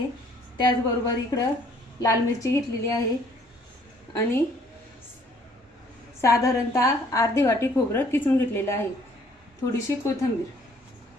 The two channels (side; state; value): both; normal; correlation 0.61